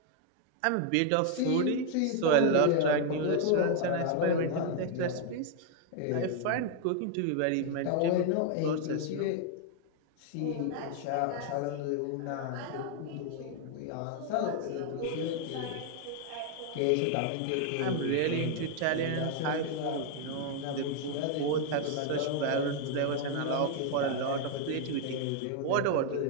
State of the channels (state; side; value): different; both; correlation 0.00